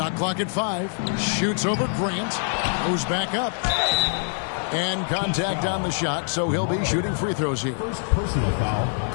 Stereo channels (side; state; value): right; silent; 61 dB below the other